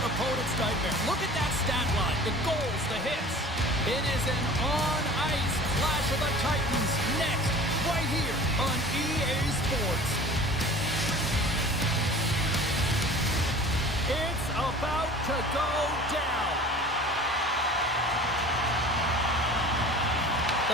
opponent's nightmare. Look at that stat line, the goals, the hits. It is an on-ice clash of the Titans next, right here on EA Sports. It's about to go down. The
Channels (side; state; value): both; normal; correlation 0.42